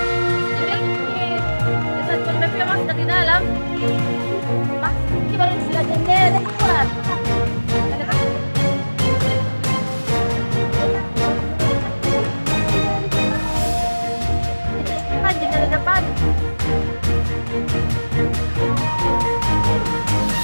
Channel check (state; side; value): inverted; both; correlation -1.00